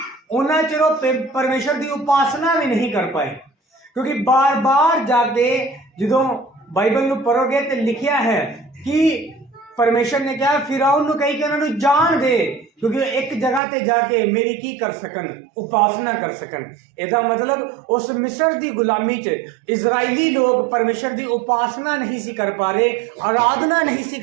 उन्ना चिर परमेश्वर की उपासना भी नहीं कर पाए। क्योंकि बार बार जाके जो बाइबल में पढ़ोगे तो लिखा है कि परमेश्वर ने कहा फिरौन नूं कही कि उन्होंने जान दे, क्योंकि एक जगह ते जाके मेरी की कर सकन, उपासना कर सकन। इसका मतलब उस मिस्र की गुलामी च इजराइली लोग परमेश्वर की उपासना नहीं सी कर पा रहे, आराधना नहीं सी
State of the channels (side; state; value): left; drops out; at 13.6 s